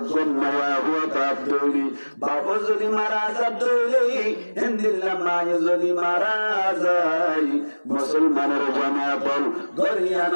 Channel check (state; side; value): inverted; both; correlation -1.00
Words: হুয়া তাপ দইলি বাবা যদি মারা যা দইলি হিন্দিল্লা মায়ে যদি মারা যায় মুসলমানের জামাতল